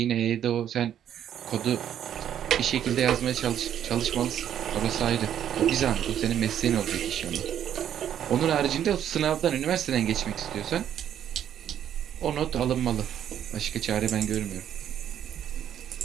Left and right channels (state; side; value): quieter; left; 10.0 dB